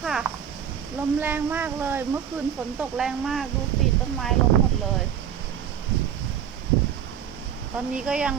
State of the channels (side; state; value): left; quieter; 9.1 dB